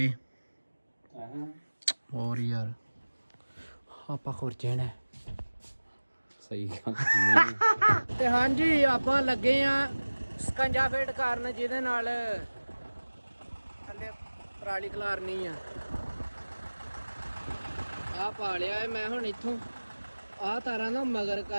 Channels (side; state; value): both; inverted; correlation -1.00